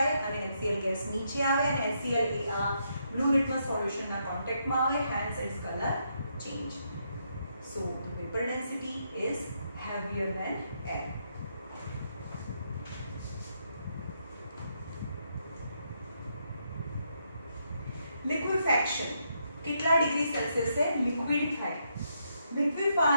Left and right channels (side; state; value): both; inverted; correlation -0.78